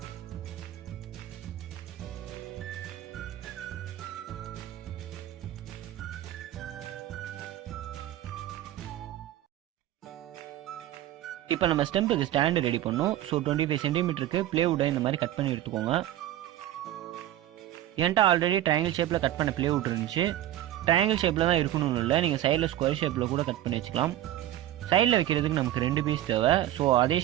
இப்போ நம்ம ஸ்டெம்புக்கு ஸ்டாண்டு ரெடி பண்ணோம். ஸோ 25 சென்டிமீட்டருக்கு பிளேவுட்டை இந்த மாதிரி கட் பண்ணி எடுத்துக்கோங்க. என்கிட்ட ஆல்ரெடி ட்ரையாங்கிள் ஷேப்பில் கட் பண்ண பிளேவுட் இருந்துச்சு. ட்ரையாங்கிள் ஷேப்பில் தான் இருக்கணும்னு இல்லை, நீங்கள் சைடில் ஸ்கொயர் ஷேப்பில் கூட கட் பண்ணி வச்சுக்கலாம். சைடில் வைக்கிறதுக்கு நமக்கு 2 பீஸ் தேவை. ஸோ அதே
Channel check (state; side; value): quieter; left; 13.4 dB